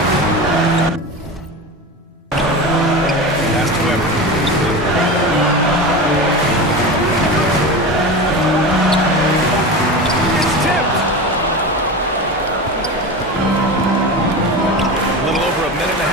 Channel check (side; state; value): both; normal; correlation 0.26